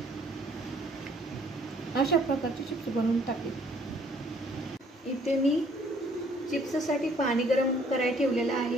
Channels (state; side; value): normal; both; correlation 0.61